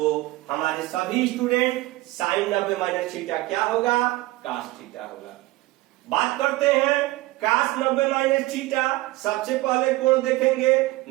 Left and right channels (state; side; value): quieter; left; 19.6 dB